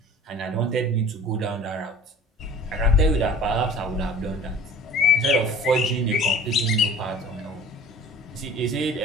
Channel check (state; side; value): normal; both; correlation 0.44